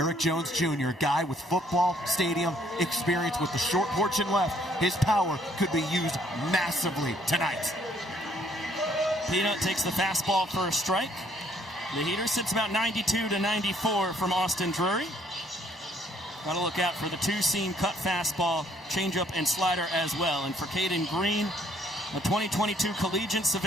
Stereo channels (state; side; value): normal; both; correlation 0.64